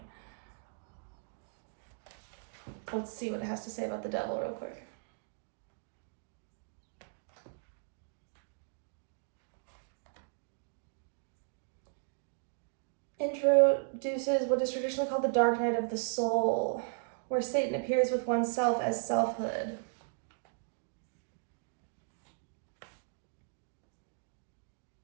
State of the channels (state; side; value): silent; left; digital silence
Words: Let's see what it has to say about the devil real quick. Introduces what is traditionally called the dark night of the soul, where Satan appears with oneself as selfhood.